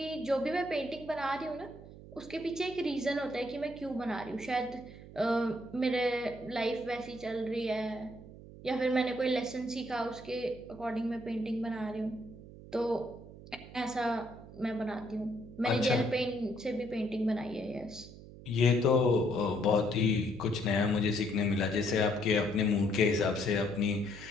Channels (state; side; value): noise; right; hum, 16 dB below the sound